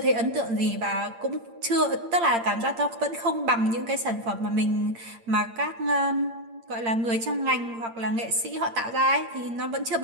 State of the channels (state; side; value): late; left; 8.7 ms